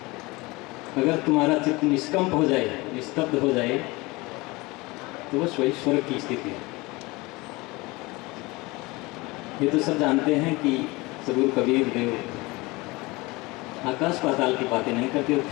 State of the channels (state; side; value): quieter; right; 23.2 dB